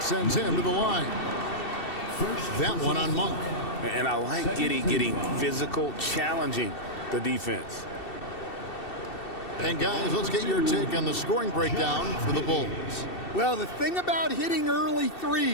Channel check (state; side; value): late; right; 2.7 ms